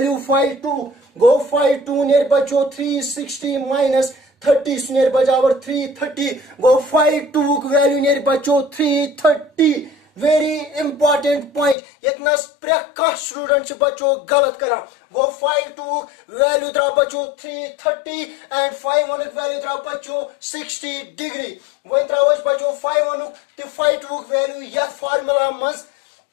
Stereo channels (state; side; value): drops out; right; at 11.8 s